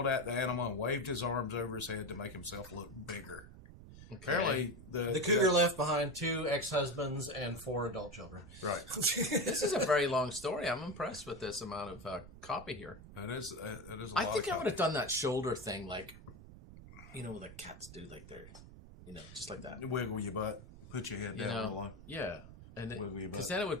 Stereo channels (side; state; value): right; noise; rumble, 16 dB below the sound